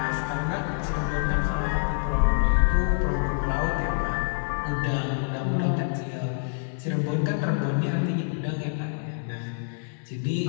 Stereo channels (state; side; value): silent; right; 59 dB below the other